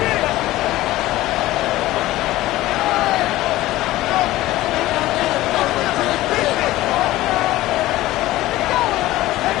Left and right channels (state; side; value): quieter; right; 16.6 dB